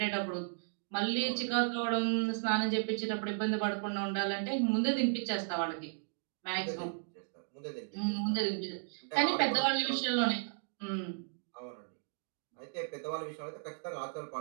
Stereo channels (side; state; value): left; silent; digital silence